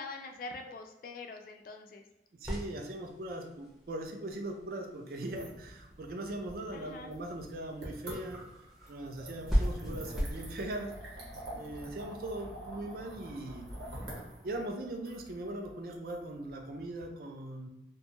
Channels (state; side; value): normal; both; correlation 0.63